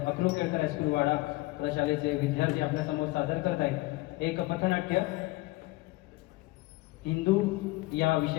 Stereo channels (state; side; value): quieter; right; 21.0 dB